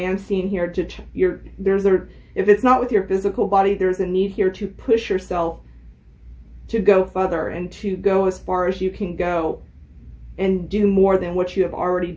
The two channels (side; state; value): both; identical; correlation 1.00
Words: seeing here if it's not with your physical body, there's a need here to push yourself to go further and to go as far as you can go and do more than what you have already